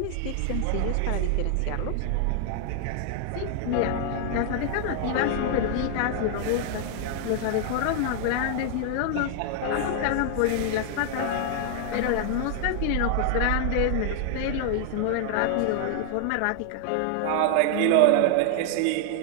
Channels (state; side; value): different; both; correlation 0.00